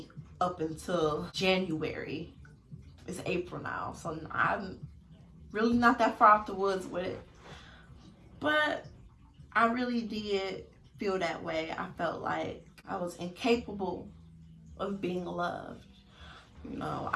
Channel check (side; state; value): both; identical; correlation 1.00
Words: up until January. It's April now, so I'm really not that far off the woods with it. But I really did feel that way. I felt like I was incapable of being loved. You know,